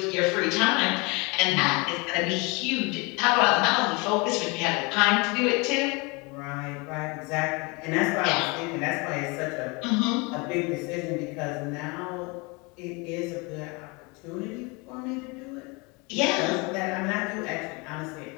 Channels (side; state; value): right; quieter; 28.1 dB